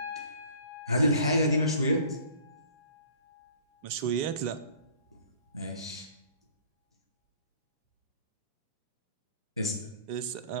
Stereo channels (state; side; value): inverted; both; correlation -0.51